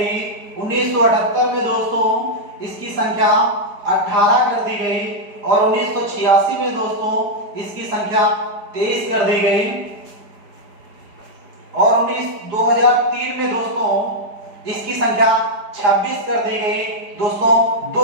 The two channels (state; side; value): late; left; 4.9 ms